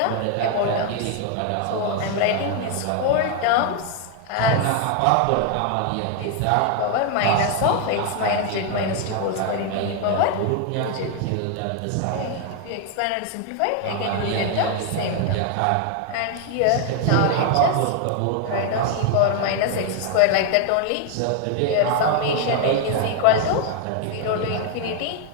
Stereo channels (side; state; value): both; different; correlation 0.01